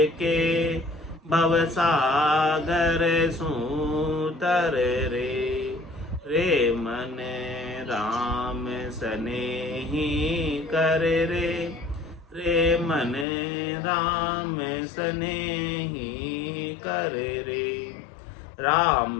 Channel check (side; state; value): right; drops out; at 13.2 s